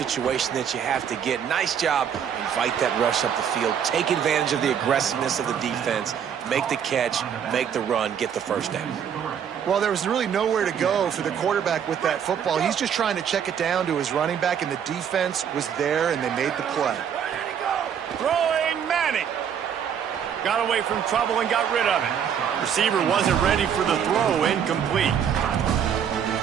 that you have to get. Nice job. Invite that rush up the field. Take advantage of the aggressiveness of the defense. Make the catch, make the run, get the first down. Well, there was really nowhere to go for the quarterback with that football. He's just trying to check it down to his running back, and the defense was there, and they made the play. Throwing Manning. Got away from trouble and got rid of it. Receiver wasn't ready for the throw, incomplete.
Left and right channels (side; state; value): left; quieter; 8.3 dB